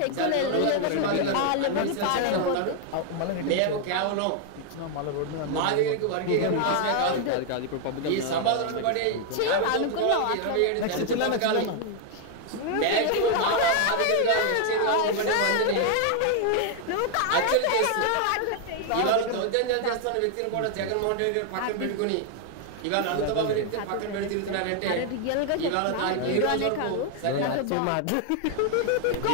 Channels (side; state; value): both; different; correlation 0.00